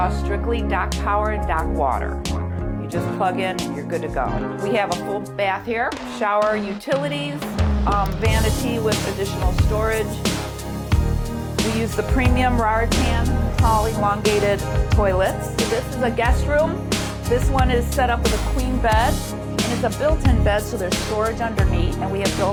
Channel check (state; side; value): identical; both; correlation 1.00